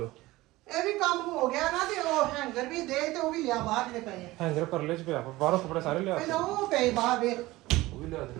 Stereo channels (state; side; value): quieter; left; 18.8 dB